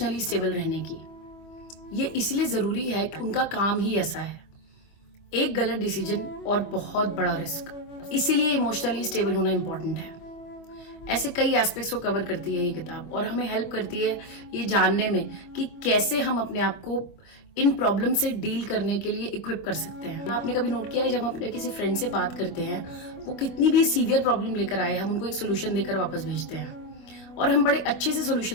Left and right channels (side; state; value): right; late; 25 ms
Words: स्टेबल रहने की। ये इसलिए जरूरी है कि उनका काम ही ऐसा है, एक गलत डिसीजन और बहुत बड़ा रिस्क, इसीलिए इमोशनली स्टेबल होना इंपॉर्टेंट है। ऐसे कई एस्पेक्ट्स को कवर करती है ये किताब और हमें हेल्प करती है ये जानने में कि कैसे हम अपने आप को इन प्रॉब्लम से डील करने के लिए इक्विप कर सकते हैं। आपने कभी नोट किया है जब हम अपने किसी फ्रेंड से बात करते हैं, वो कितनी भी सीवियर प्रॉब्लम लेकर आए, हम उनको एक सोल्यूशन देकर वापस भेजते हैं और हम बड़े अच्छे से